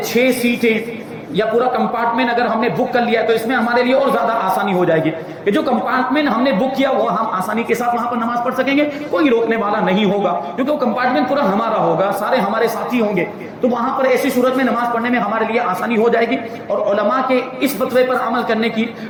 6 سیٹیں یا پورا کمپارٹمنٹ اگر ہم نے بک کر لیا تو اس میں ہمارے لیے اور زیادہ آسانی ہو جائے گی کہ جو کمپارٹمنٹ ہم نے بک کیا وہ ہم آسانی کے ساتھ وہاں پر نماز پڑھ سکیں گے، کوئی روکنے والا نہیں ہوگا کیونکہ وہ کمپارٹمنٹ پورا ہمارا ہوگا، سارے ہمارے ساتھی ہوں گے، تو وہاں پر ایسی صورت میں نماز پڑھنے میں ہمارے لیے آسانی ہو جائے گی۔ اور علماء کے اس فتوے پر عمل کرنے کی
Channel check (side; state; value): both; identical; correlation 1.00